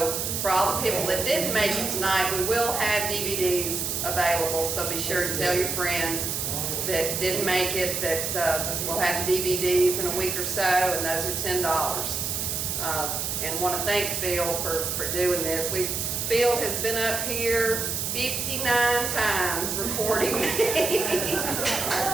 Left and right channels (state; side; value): noise; right; hiss, 2 dB below the sound